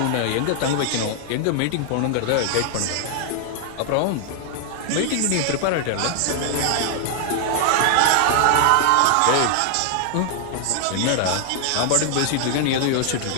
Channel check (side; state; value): both; different; correlation 0.00